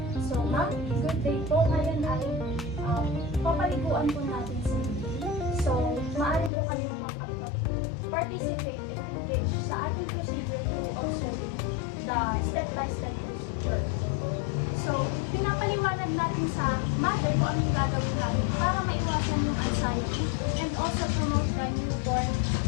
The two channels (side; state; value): right; drops out; at 6.5 s